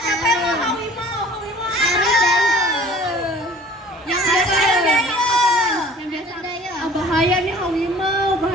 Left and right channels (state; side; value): normal; both; correlation 0.48